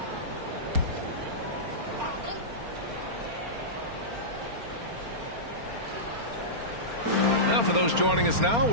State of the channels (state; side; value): late; left; 4.3 ms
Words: Now, for those joining us now,